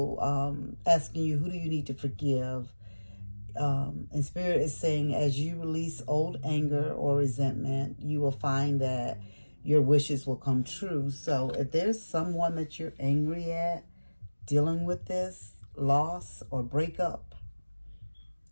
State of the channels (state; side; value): inverted; both; correlation -1.00